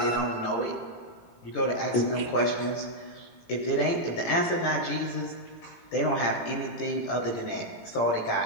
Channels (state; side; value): late; right; 17 ms